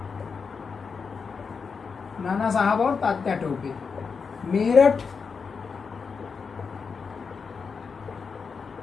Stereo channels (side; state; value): right; quieter; 5.4 dB